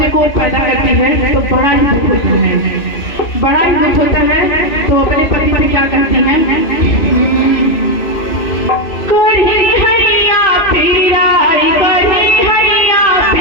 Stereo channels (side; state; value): right; late; 3.0 ms